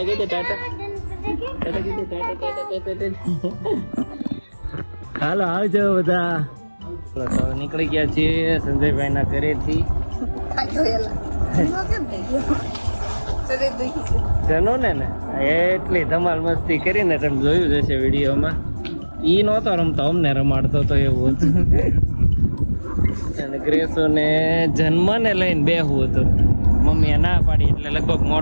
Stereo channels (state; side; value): inverted; both; correlation -1.00